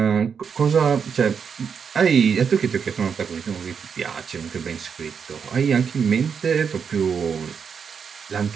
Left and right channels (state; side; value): quieter; left; 6.6 dB